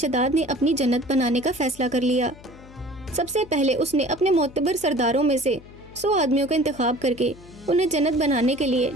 نے اپنی جنت بنانے کا فیصلہ کر لیا۔ سب سے پہلے اس نے اپنے معتبر سرداروں میں سے 100 آدمیوں کا انتخاب کر کے انہیں جنت بنانے کے لیے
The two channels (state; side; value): noise; left; hum, 20 dB below the sound